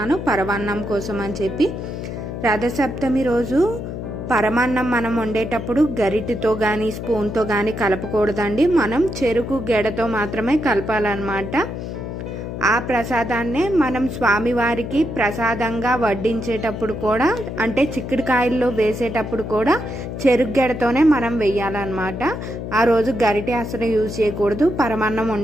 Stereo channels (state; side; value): noise; left; hum, 7 dB below the sound